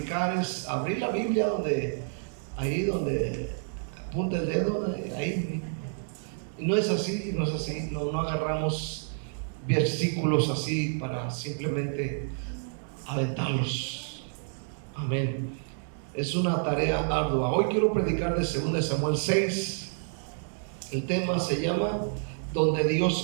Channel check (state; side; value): silent; left; digital silence